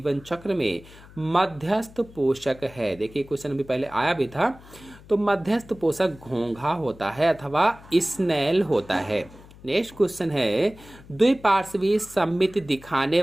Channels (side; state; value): left; noise; hum, 21 dB below the sound